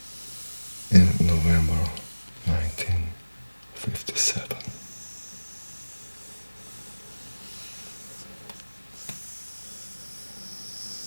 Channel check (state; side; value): inverted; both; correlation -1.00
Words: in November 1957.